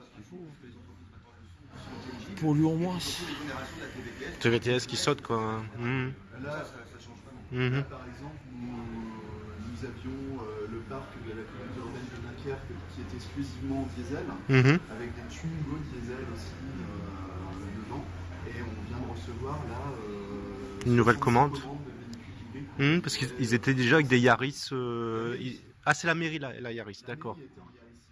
Pour lui, au moins. TVTS qui saute, quoi. Mhm. Là, Ça change vraiment. Mhm. par exemple, nous avions le parc de la communauté urbaine de Dunkerque qui était exclusivement diesel, Mhm. avec des Twingo diesel aussi dedans. Et on vient de recevoir là Une nouvelle 65 commande. de véhicules hybrides. Parce qu'ils étaient déjà avec des Yaris. Ah, c'est la mairie, la Yaris, d'accord. La mairie était en Yaris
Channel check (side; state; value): both; identical; correlation 1.00